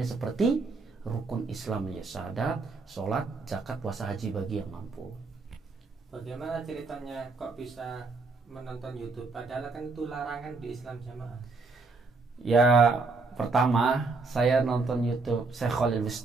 seperti rukun Islam, ya syahadat, sholat, zakat, puasa, haji bagi yang mampu. Bagaimana ceritanya kok bisa menonton YouTube? Padahal kan itu larangan di Islam Jamaah. Ya, pertama saya nonton YouTube Syekh Khalil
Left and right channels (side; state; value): left; quieter; 4.0 dB